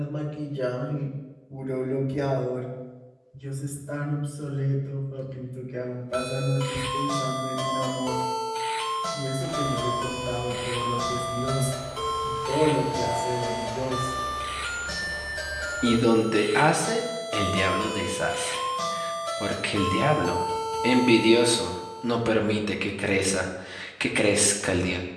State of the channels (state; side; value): identical; both; correlation 1.00